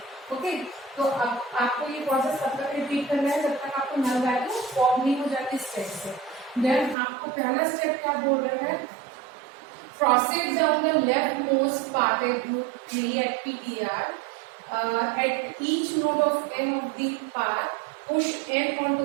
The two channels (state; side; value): drops out; left; at 7.0 s